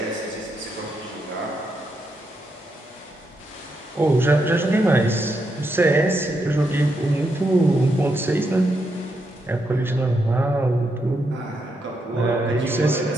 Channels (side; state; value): both; normal; correlation 0.81